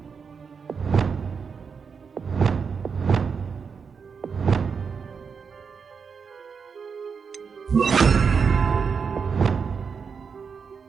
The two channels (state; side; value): quieter; left; 5.9 dB